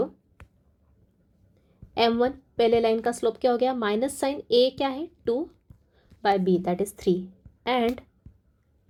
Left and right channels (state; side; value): identical; both; correlation 1.00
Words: m1 पहले लाइन का स्लोप क्या हो गया, माइनस साइन a क्या है 2/b that is 3 and